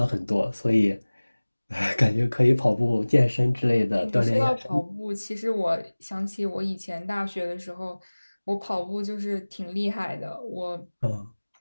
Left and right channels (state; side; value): inverted; both; correlation -1.00